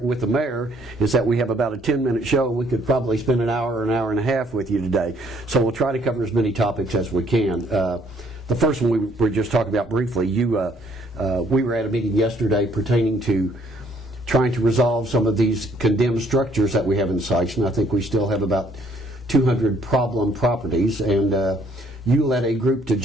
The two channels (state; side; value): normal; both; correlation 0.64